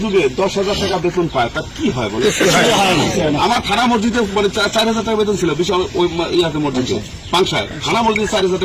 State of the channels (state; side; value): identical; both; correlation 1.00